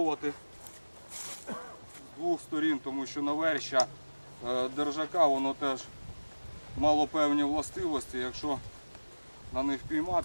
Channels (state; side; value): inverted; both; correlation -1.00